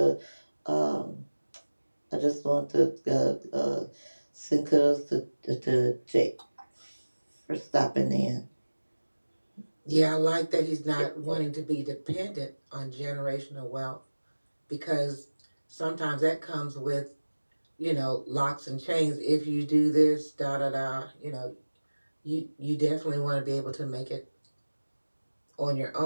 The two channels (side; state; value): both; inverted; correlation -1.00